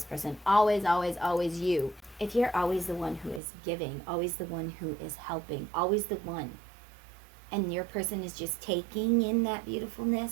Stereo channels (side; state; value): left; drops out; at 3.4 s